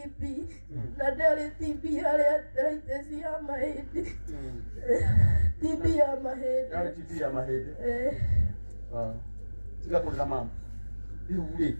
na ndarĩ TB harĩ arthritis ya mahĩndĩ. TB ya mahĩndĩ. Yarĩ TB ya mahĩndĩ. Tiga kũrĩra mama. Rĩu rĩ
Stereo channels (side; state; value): both; inverted; correlation -1.00